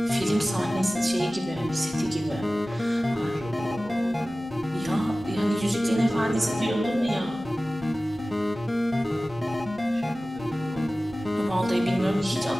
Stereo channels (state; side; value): noise; right; rumble, 23 dB below the sound